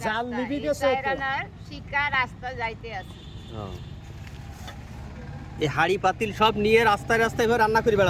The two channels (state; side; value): identical; both; correlation 1.00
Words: জাল নিবি গেছে তো। চাইরানার শিকা রাস্তা যাইতে আছে। এই হাড়ি পাতিল সব নিয়ে রাস্তায় রাস্তায় এভাবে রান্না করে